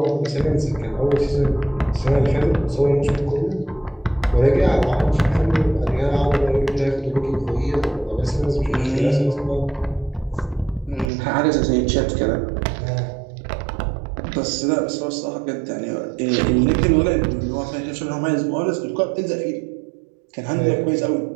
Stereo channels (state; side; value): drops out; left; at 11.1 s